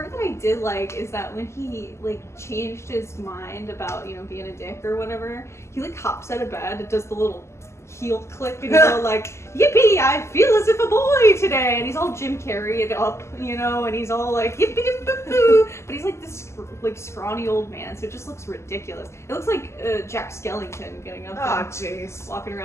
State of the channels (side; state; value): right; late; 0.13 ms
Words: that I did like is that when he, like, changed his mind about, you know, being a dick or whatever, he, like, hops out of bed and does the little heel click, and he's all like, yippee, I feel as if a boy today, and he's all Jim Carrey'd up, you know, and he's all like, yippee boo boo, but he's like this, like, scrawny old man, so it just looks ridiculous. It looks like Jack Skellington getting up and jeez. walking